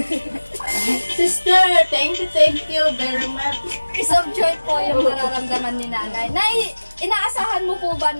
Sister, thank you very much. Piece of joy po yung nararamdaman ni Nanay. Nay, inaasahan mo po ba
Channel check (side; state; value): both; inverted; correlation -1.00